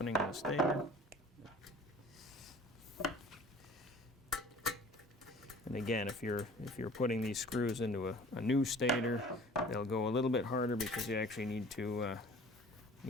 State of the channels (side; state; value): both; normal; correlation 0.48